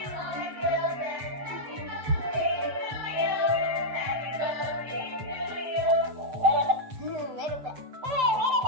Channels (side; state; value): left; late; 7.7 ms